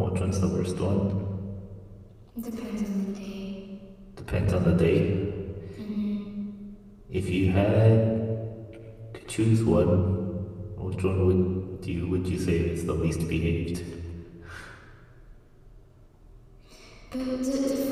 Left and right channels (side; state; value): both; identical; correlation 1.00